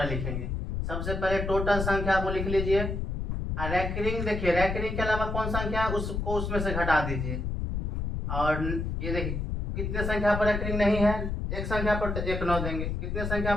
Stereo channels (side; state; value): left; noise; rumble, 3 dB below the sound